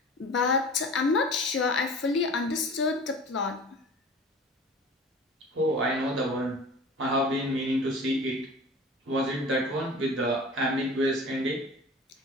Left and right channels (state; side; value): normal; both; correlation 0.40